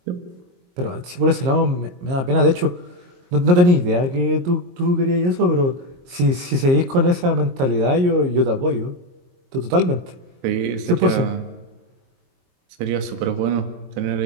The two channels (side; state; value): left; late; 22 ms